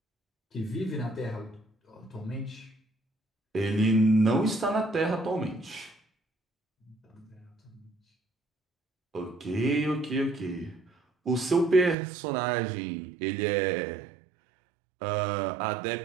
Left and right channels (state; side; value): drops out; left; at 12.0 s